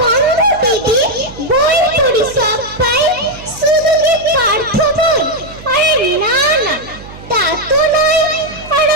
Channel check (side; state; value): right; noise; hum, 17 dB below the sound